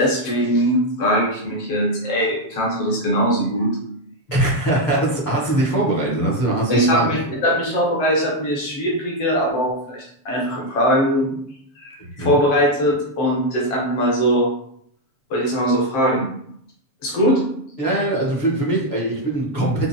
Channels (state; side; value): late; right; 7.5 ms